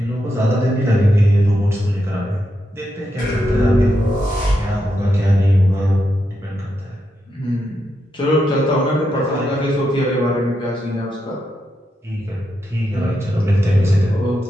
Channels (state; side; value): normal; both; correlation 0.84